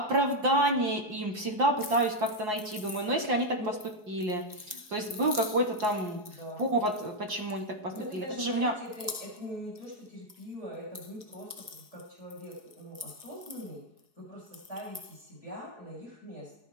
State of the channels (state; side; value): late; left; 4.7 ms